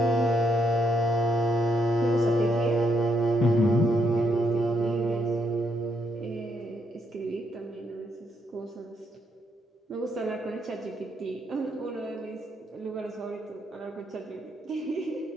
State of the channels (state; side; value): normal; both; correlation 0.76